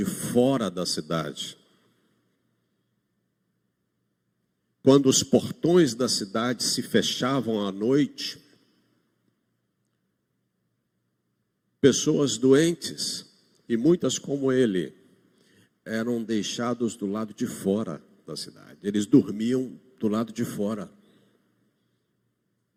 fora da cidade. Quando os portões da cidade se fechavam à noite, pessoas doentes, e muitas como ele, eram deixados do lado de fora da cidade. Eles dormiam do lado de fora.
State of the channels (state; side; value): identical; both; correlation 1.00